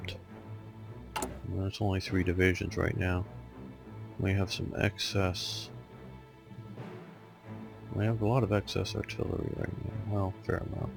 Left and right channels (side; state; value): both; identical; correlation 1.00